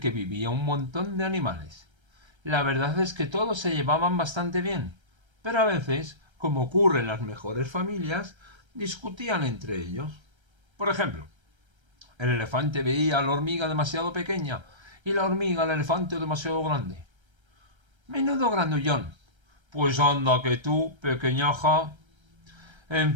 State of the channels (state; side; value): late; left; 1.3 ms